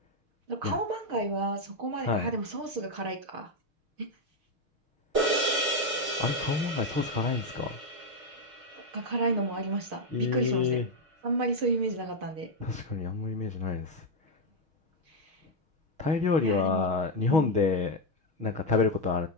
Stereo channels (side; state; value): left; late; 6.2 ms